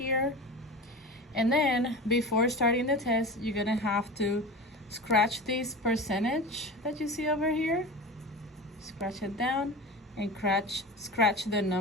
And then before starting the test, you're gonna have to scratch this percentage that you see over here. Scratch it down and scratch the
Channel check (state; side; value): normal; both; correlation 0.30